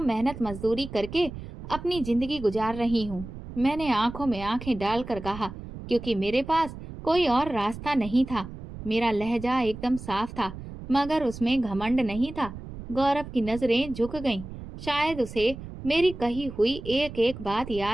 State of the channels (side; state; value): right; noise; rumble, 12 dB below the sound